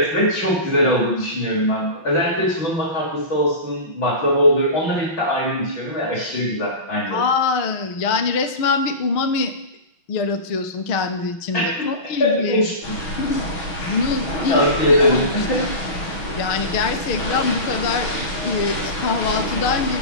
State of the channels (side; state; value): right; late; 6.0 ms